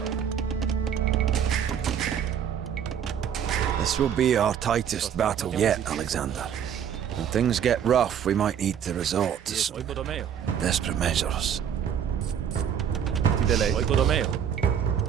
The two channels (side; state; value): left; quieter; 8.6 dB